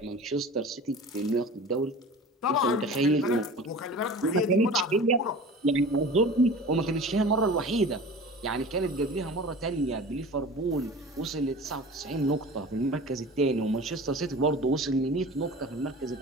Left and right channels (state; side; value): normal; both; correlation 0.38